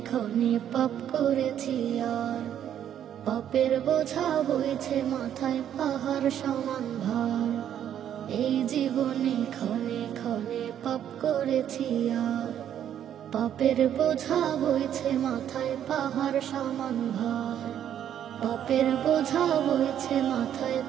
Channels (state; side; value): quieter; left; 10.0 dB